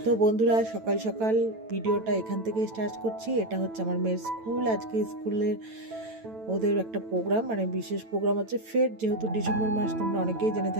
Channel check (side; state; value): left; late; 9.0 ms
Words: তো বন্ধুরা, সকাল সকাল ভিডিওটা এখান থেকে স্টার্ট করছি। এটা হচ্ছে আমার মেয়ের স্কুল। আজকে স্কুলের ওদের একটা প্রোগ্রাম, মানে বিশেষ প্রোগ্রাম হচ্ছে ফেট। যেহেতু ডিসেম্বর মাস, তোমরা অনেকেই জেনে